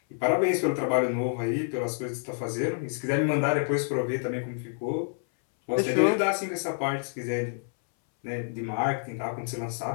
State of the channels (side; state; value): right; silent; 59 dB below the other